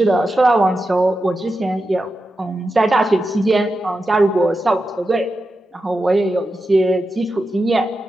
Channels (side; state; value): both; normal; correlation 0.90